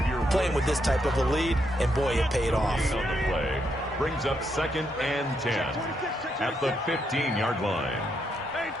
playing with this type of a lead, and boy, it paid off. On the play brings up 2nd and 10 at the 15-yard line.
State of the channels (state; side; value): normal; both; correlation 0.78